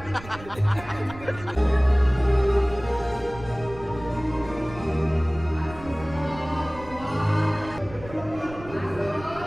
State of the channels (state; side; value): noise; right; rumble, 16 dB below the sound